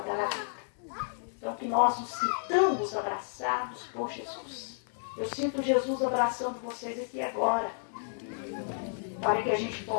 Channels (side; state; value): right; silent; digital silence